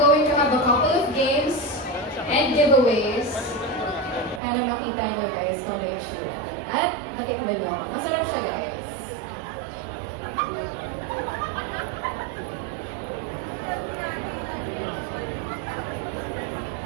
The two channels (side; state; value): left; drops out; at 4.4 s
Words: to have a couple of games and giveaways para makita nyo guys kung ano yung issue. At matikman nyo. Masarap siya guys.